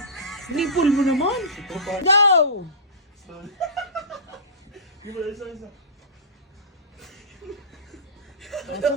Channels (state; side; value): normal; both; correlation -0.20